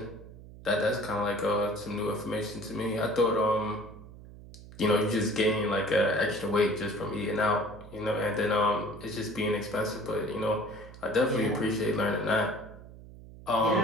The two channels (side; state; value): right; noise; hum, 17 dB below the sound